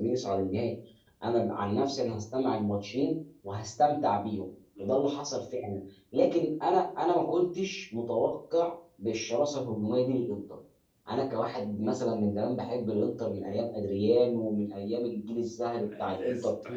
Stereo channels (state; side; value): identical; both; correlation 1.00